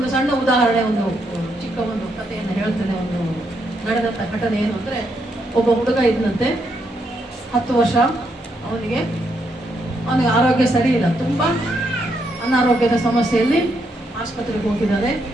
ಸಣ್ಣ ಉದಾಹರಣೆ, ಒಂದು ಚಿಕ್ಕ ಒಂದು ಕಥೆಯನ್ನು ಹೇಳ್ತೇನೆ. ಒಂದು ನಡೆದಂತ ಘಟನೆ ಏನು ಅಂದ್ರೆ, ಒಬ್ಬ ಹುಡುಗ ಇದ್ದಂತೆ, 10 ವರ್ಷ. ಅವನಿಗೆ ಆರೋಗ್ಯ ಸರಿ ಇಲ್ಲ, ತುಂಬಾ ಅನಾರೋಗ್ಯದ ಸಮಸ್ಯೆಯಲ್ಲಿ ಆಸ್ಪತ್ರೆಗೆ ಹೋಗಿದ್ದಾರೆ.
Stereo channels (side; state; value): both; normal; correlation 0.78